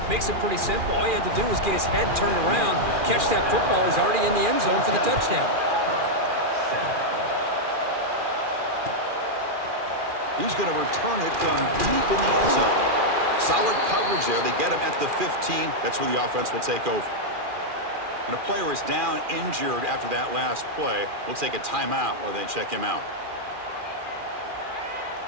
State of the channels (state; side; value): late; left; 2.4 ms